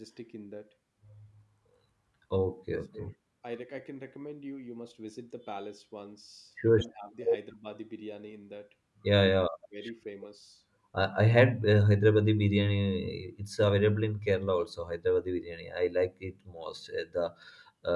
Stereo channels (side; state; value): both; identical; correlation 1.00